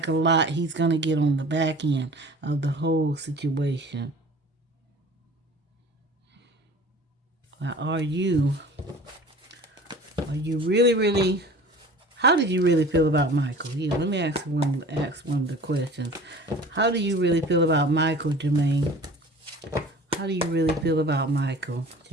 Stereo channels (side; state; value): both; normal; correlation 0.43